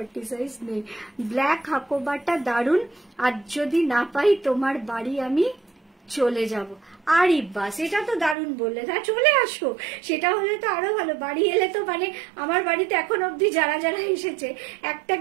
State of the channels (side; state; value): left; drops out; at 8.3 s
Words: সাইজ নেই। ব্ল্যাক হাকোবাটা দারুন, আর যদি না পাই তোমার বাড়ি আমি চলে যাব। আরে বাস, এটা তো দারুণ বললে, না চলে আসো, সেটা হলে তো আরো ভালো। বাড়ি এলে তো মানে আমার বাড়িতে এখন অবধি যারা যারা এসেছে একটা